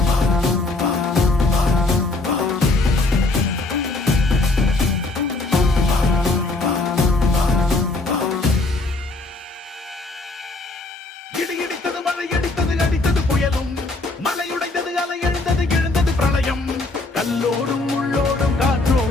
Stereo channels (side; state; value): right; quieter; 3.1 dB